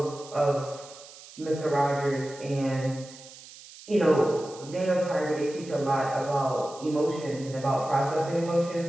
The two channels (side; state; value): right; noise; hiss, 18 dB below the sound